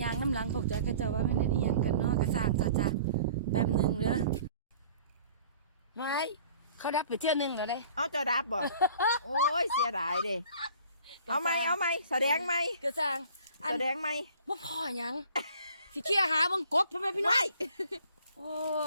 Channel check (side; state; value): both; inverted; correlation -0.50